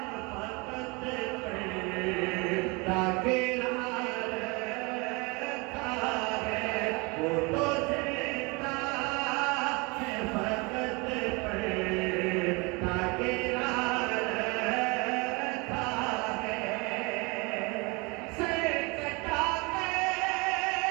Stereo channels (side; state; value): left; quieter; 27.9 dB